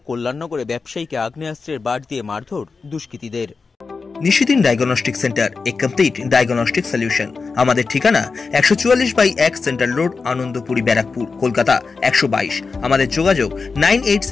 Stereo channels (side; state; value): right; quieter; 4.6 dB